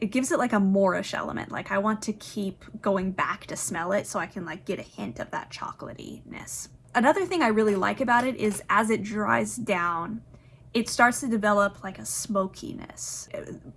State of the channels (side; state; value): both; identical; correlation 1.00